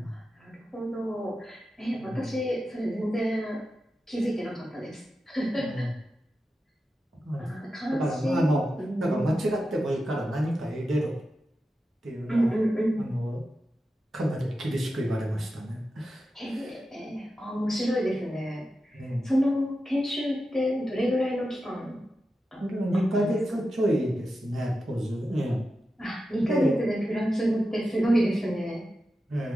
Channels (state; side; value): normal; both; correlation 0.91